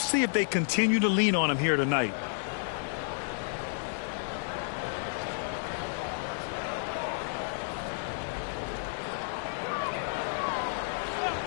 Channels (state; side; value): silent; right; 57 dB below the other